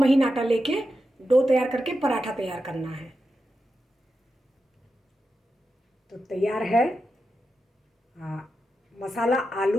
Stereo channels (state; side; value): normal; both; correlation 0.89